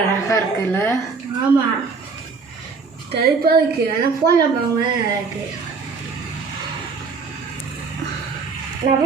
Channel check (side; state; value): left; quieter; 4.8 dB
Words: அழகாக இருக்குல்ல? ஆமாம், கருப்பாக இருக்கு. ஆனால் ஃபோனில் பாருங்க இருக்கு.